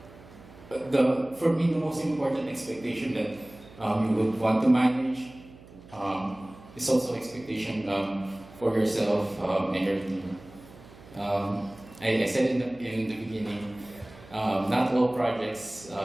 For me, the most important expectation that you would want to manage is also expectation for yourself and your team. I said in the beginning, not all projects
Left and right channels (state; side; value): noise; right; hum, 21 dB below the sound